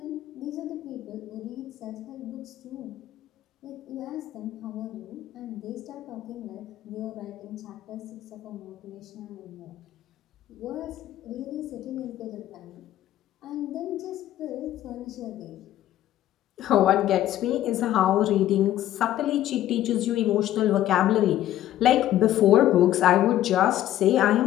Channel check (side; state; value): right; quieter; 13.0 dB